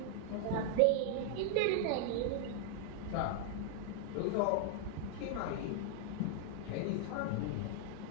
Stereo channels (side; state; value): both; different; correlation 0.00